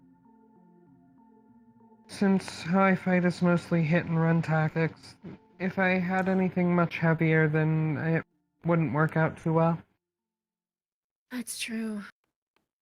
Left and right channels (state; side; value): identical; both; correlation 1.00